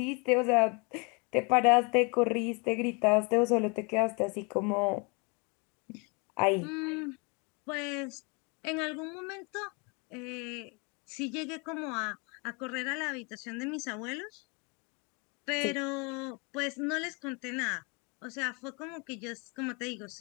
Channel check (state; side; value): quieter; right; 31.7 dB